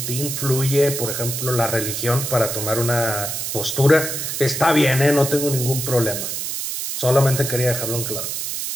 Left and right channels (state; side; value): noise; right; hiss, 4 dB below the sound